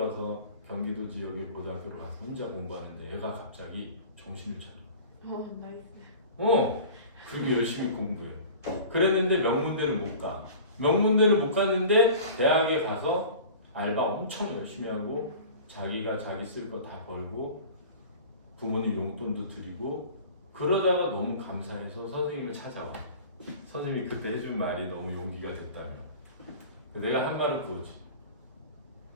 경기도 지역의 고등학교로 가서 혼자 공부하는데 애가 갑자기 정신을 차려. 나이스. 그리고 열심히 공부해. 그랬는데 명문대는 못 가. 명문대는 못 갔는데 대학에 가서 알바 엄청 열심히 하고 자기가 자기 쓸 거 다 벌고 부모님 용돈도 드리고 그러다가 너무 감사해서 선생님을 찾아와. 선생님이 그때 해준 말이 너무 용기가 됐다며. 내가 한 말을 그거지.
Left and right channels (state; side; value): inverted; both; correlation -0.40